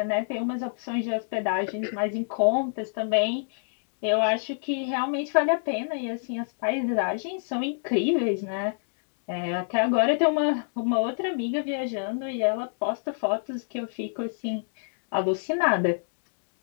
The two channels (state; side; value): silent; right; digital silence